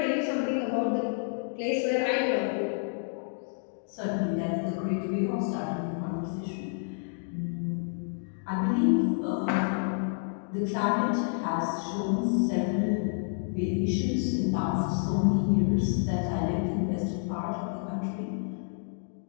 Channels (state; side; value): silent; right; digital silence